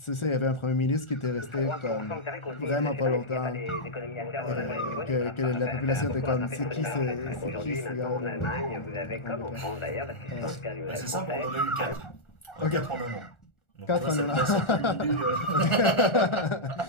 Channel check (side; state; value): right; late; 1.4 ms